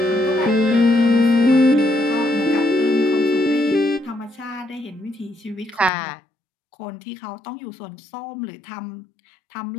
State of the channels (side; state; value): right; drops out; at 5.9 s